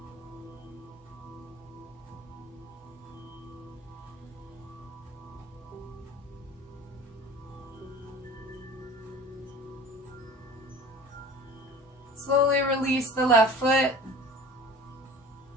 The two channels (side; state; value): both; normal; correlation 0.40